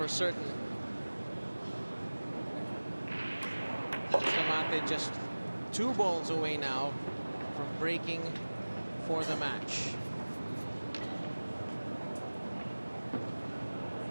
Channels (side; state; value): both; inverted; correlation -1.00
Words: certain. Bustamante just 2 balls away now from breaking for the match.